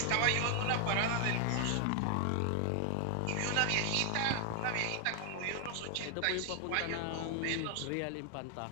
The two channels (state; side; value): different; both; correlation 0.00